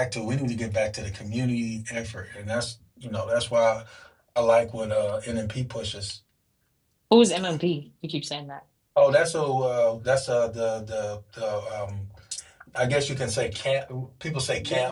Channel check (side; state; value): both; identical; correlation 1.00